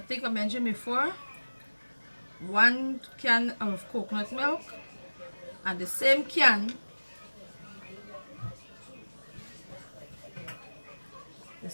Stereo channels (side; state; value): both; inverted; correlation -1.00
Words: I mentioned before, 1 can of coconut milk, and the same can,